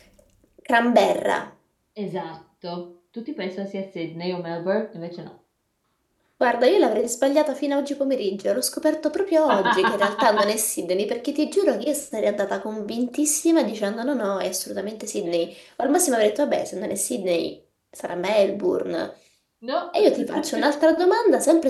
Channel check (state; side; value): identical; both; correlation 1.00